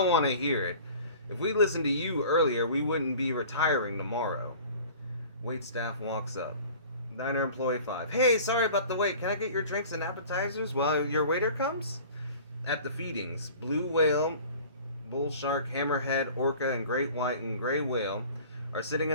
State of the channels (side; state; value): both; inverted; correlation -0.44